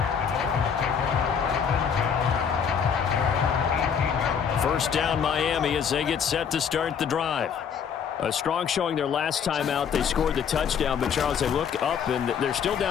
First down Miami as they get set to start the drive. A strong showing their last time out. They scored the touchdown, but Charles, they look up and they're still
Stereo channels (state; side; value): quieter; right; 7.3 dB